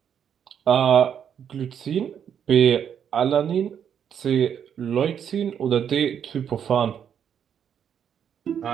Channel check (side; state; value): left; quieter; 8.4 dB